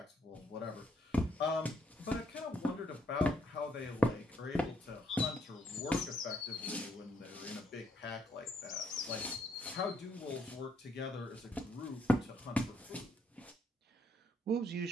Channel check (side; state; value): both; normal; correlation 0.72